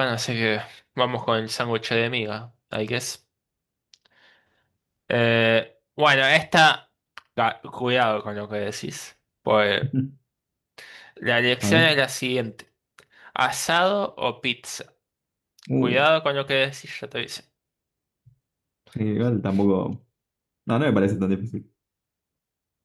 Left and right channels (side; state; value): both; identical; correlation 1.00